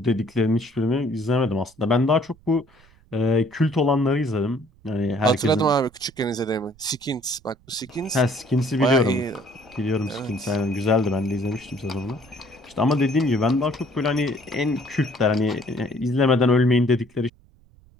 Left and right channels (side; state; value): right; noise; rumble, 29 dB below the sound